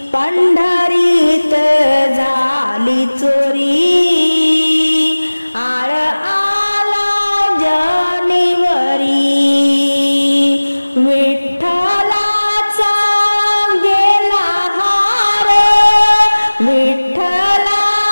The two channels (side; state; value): both; inverted; correlation -1.00